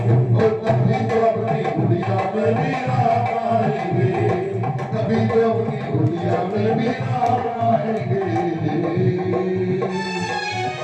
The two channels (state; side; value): identical; both; correlation 1.00